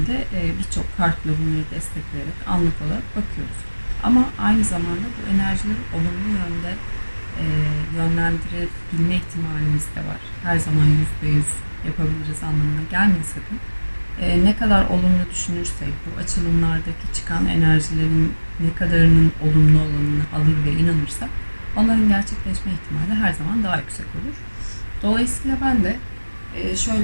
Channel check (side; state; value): both; inverted; correlation -1.00